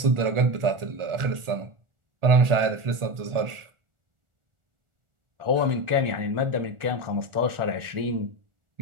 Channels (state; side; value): late; left; 1.4 ms